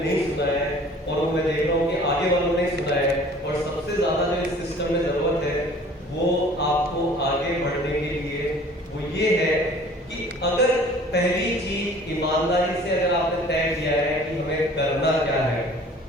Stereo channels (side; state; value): both; normal; correlation 0.49